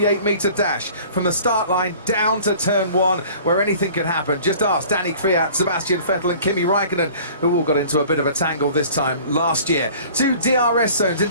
metre dash from the start line down to turn 1, where anything can happen. Just ask Danny Kvyat, Sebastian Vettel and Kimi Raikkonen, who all got into a bit of a tangle this time last year. 2 DRS zones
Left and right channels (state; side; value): inverted; both; correlation -0.47